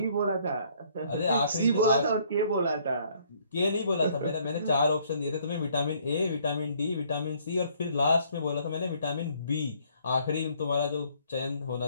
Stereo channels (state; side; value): inverted; both; correlation -0.63